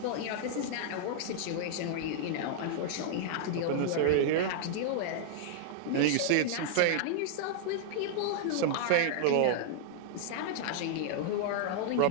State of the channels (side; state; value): both; different; correlation -0.01